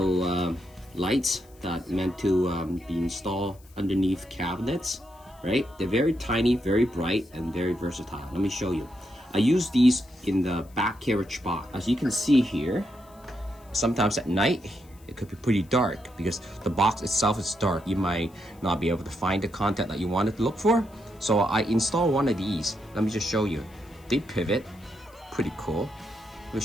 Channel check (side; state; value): left; noise; hiss, 28 dB below the sound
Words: lights that meant to be installed underneath cabinets, right? They're very tiny, very bright, and very versatile. Let me show you. I use these in the back carriage box. As you can see here, sometimes at night, it could be pretty dark because the box itself is dark. You might not be able to find the content that you wanted to look for. So I installed one of these. Let me just show you. They pivot. Pretty cool. Let me